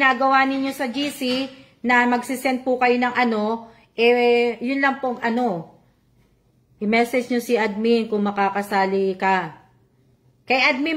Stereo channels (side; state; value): both; identical; correlation 1.00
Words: ninyo sa GC, na magsisend po kayo ng yun lang po i-message nyo si admin kung makakasali ka. Kay